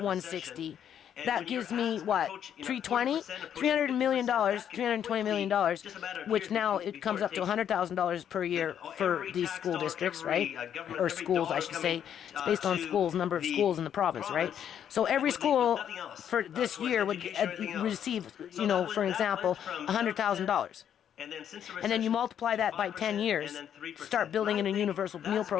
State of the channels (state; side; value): quieter; right; 9.3 dB